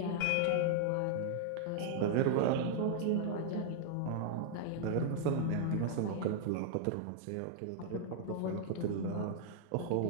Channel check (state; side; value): different; both; correlation -0.01